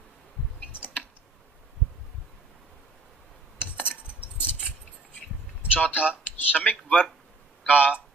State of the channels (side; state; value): left; quieter; 3.3 dB